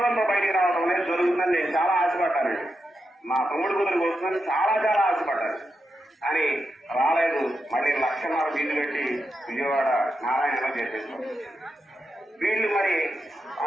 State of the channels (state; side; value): normal; both; correlation 0.87